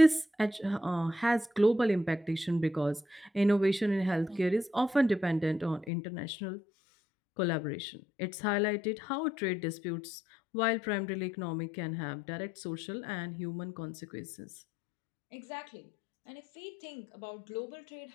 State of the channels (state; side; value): drops out; right; at 5.9 s